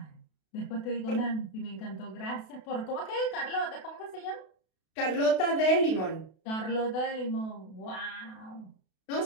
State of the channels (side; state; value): right; late; 32 ms